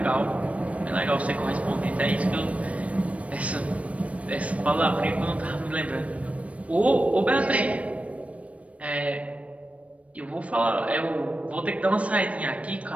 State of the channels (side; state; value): left; late; 0.064 ms